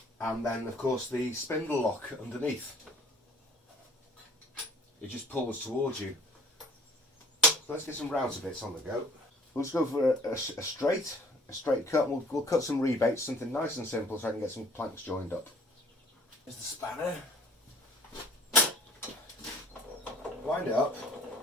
And then, of course, the spindle lock underneath. It just pulls towards you. So let's get some router bits on the go. We'll just go for a straight cut. We'll cut some rebates, something nice and simple, so I can get some planks joined up. Here's the spanner. Wind it up.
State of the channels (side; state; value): both; normal; correlation 0.53